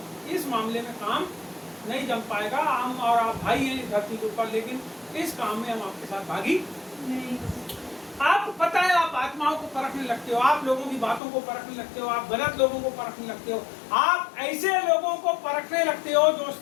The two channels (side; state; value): right; drops out; at 11.2 s